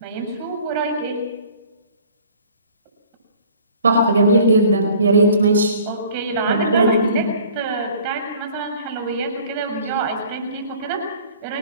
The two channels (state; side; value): inverted; both; correlation -0.51